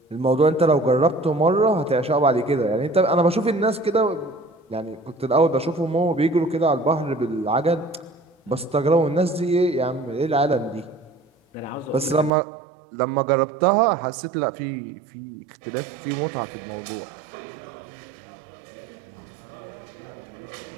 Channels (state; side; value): drops out; left; at 12.3 s